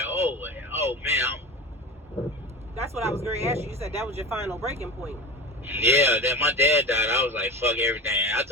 oh man. That's what I was going to ask you. You said that was your final breaking point. Yeah, that my dad died, I was like, fuck everything. I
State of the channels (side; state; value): both; normal; correlation 0.30